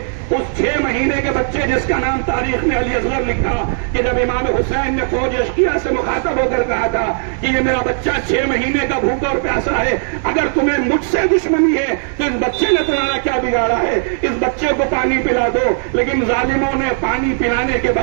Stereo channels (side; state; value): left; silent; 68 dB below the other